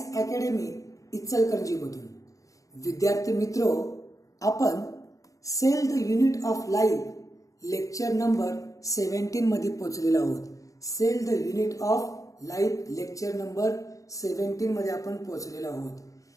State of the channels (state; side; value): late; right; 0.16 ms